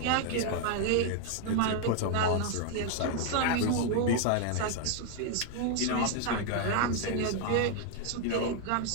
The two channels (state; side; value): different; both; correlation 0.00